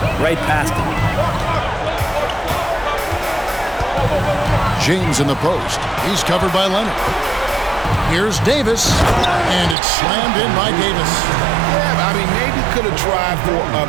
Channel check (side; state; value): left; drops out; at 9.8 s